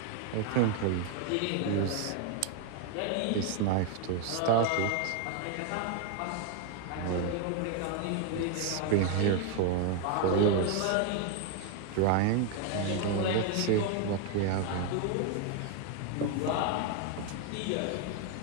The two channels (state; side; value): different; both; correlation 0.01